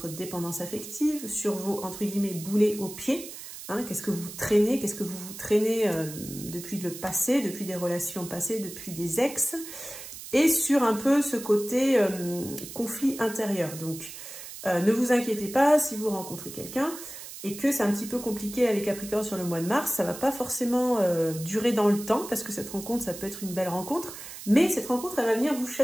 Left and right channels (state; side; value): noise; right; hiss, 12 dB below the sound